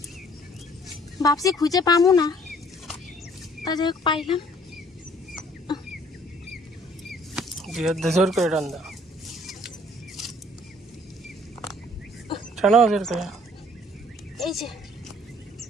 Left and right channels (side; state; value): both; normal; correlation 0.58